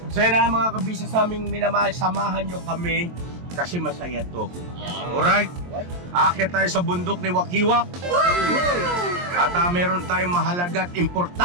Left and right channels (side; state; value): left; late; 23 ms